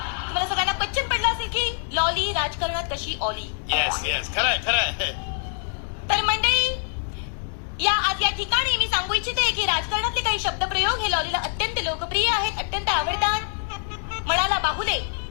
की लॉली राजकारणात कशी ऑली. येस, खरंय खरंय. तर मंडळी, आज या ठिकाणी मी सांगू इच्छिते की राजकारणातले काही शब्दप्रयोग हे लॉलीला अत्यंत लोकप्रिय आहेत, अत्यंत आवडतात. म्हणाला बाहुले.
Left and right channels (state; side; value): silent; right; 62 dB below the other